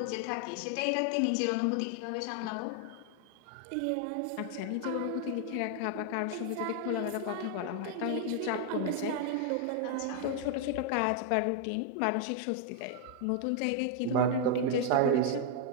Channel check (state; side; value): different; both; correlation 0.00